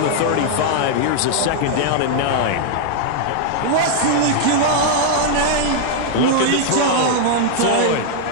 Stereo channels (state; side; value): different; both; correlation 0.00